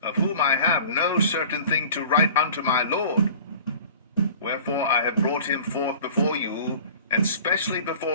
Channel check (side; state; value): both; inverted; correlation -0.44